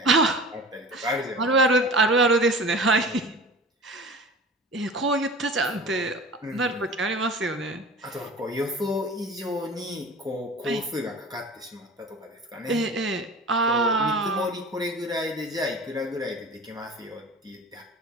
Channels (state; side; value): normal; both; correlation 0.38